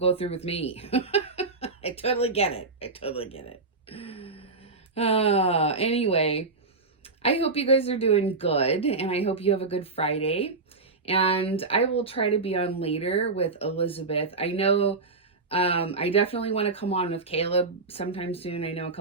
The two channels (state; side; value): quieter; left; 3.8 dB